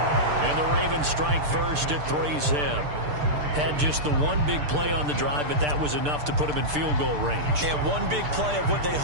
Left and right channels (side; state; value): left; late; 6.7 ms